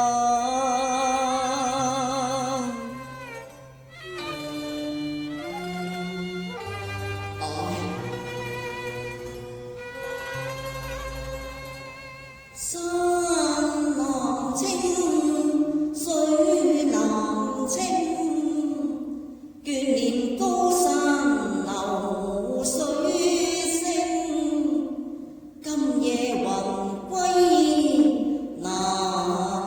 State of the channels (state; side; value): identical; both; correlation 1.00